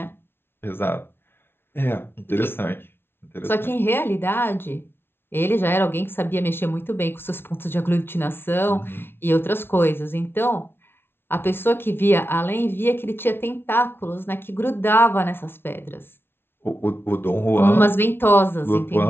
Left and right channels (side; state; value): right; late; 0.11 ms